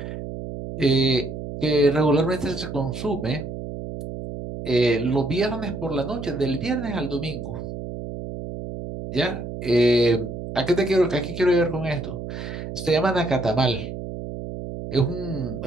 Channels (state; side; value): noise; right; hum, 8 dB below the sound